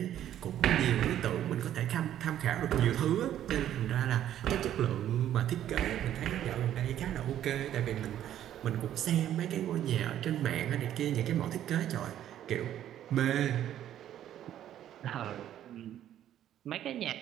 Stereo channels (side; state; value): left; quieter; 11.4 dB